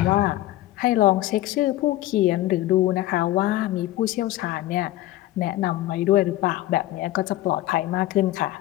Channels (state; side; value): quieter; right; 15.9 dB